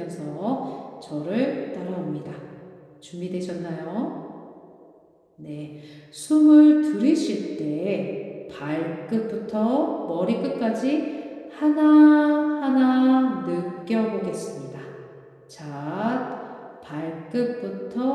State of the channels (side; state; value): both; identical; correlation 1.00